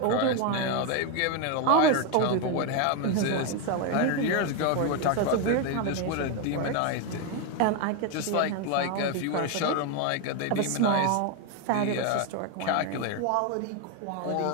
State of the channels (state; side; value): different; both; correlation 0.02